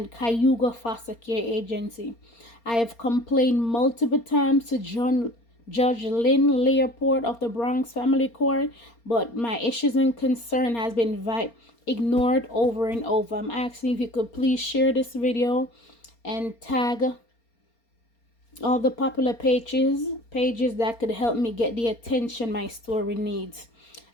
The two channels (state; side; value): late; right; 4.3 ms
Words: Cayuga foster care agency. I have complained multiple times to Judge Lynn Leopold of the Bronx Family Court, but my issues and concern has been ignored over and over. I'm asking if you could please share this video and tag all the popular pages that could help me get the attention my story needs.